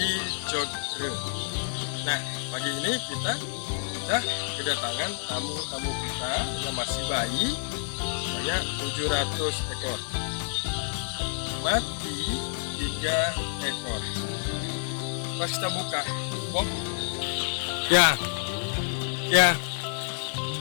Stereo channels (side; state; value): right; silent; digital silence